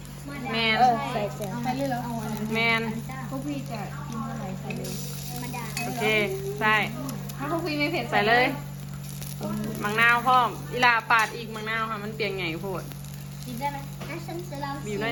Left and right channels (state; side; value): identical; both; correlation 1.00